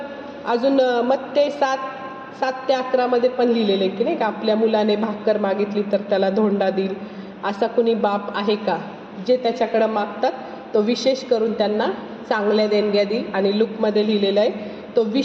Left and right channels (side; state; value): both; identical; correlation 1.00